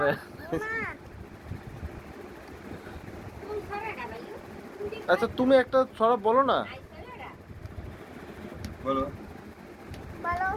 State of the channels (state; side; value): identical; both; correlation 1.00